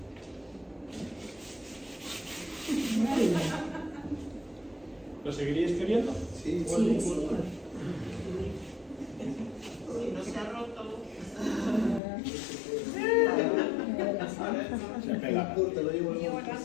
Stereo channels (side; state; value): right; drops out; at 12.0 s